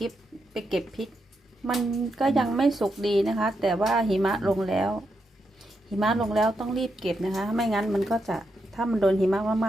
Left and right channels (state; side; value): normal; both; correlation 0.83